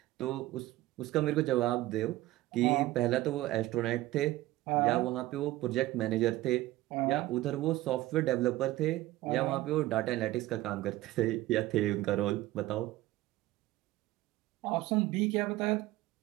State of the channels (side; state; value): left; quieter; 16.9 dB